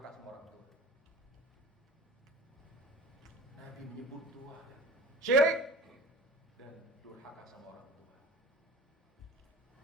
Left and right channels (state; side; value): normal; both; correlation 0.38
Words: sama orang tua. Nabi menyebut dua, syirik dan durhaka sama orang tua.